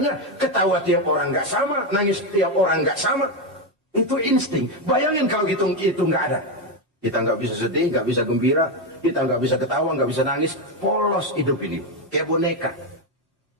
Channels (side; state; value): both; normal; correlation 0.08